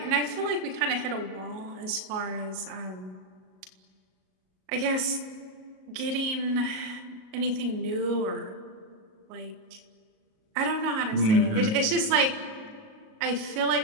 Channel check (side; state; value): left; late; 38 ms